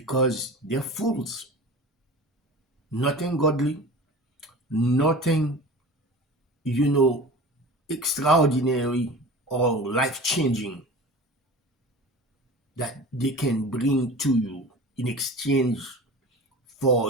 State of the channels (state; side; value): normal; both; correlation 0.36